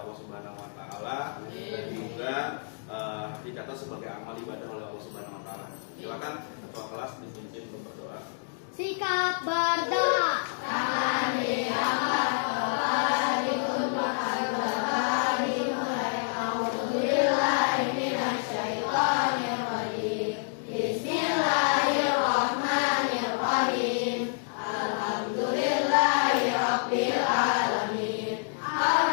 Allah Subhanahu wa taala dan juga dicatat sebagai amal ibadah oleh Allah Subhanahu wa taala. Silakan ketua kelas dipimpin untuk berdoa. Sikap berdoa. Tangan diangkat, kepala ditundukkan, berdoa dimulai. A'udzubillahi minasyaitonir rajim. Bismillahirrahmanirrahim. Alhamdulillahi rabbil alamin.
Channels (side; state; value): right; silent; digital silence